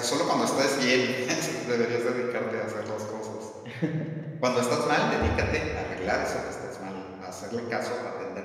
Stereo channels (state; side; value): identical; both; correlation 1.00